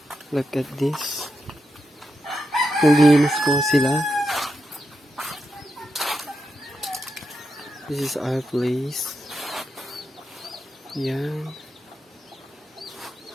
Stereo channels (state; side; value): normal; both; correlation 0.86